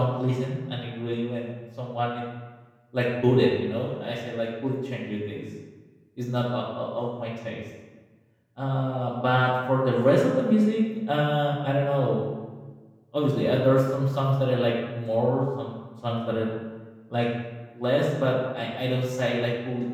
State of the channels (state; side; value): identical; both; correlation 1.00